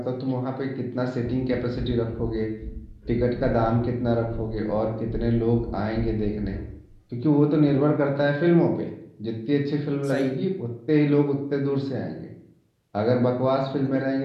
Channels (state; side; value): identical; both; correlation 1.00